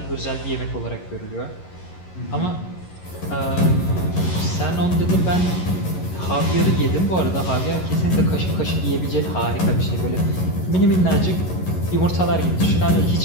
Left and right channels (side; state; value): right; late; 11 ms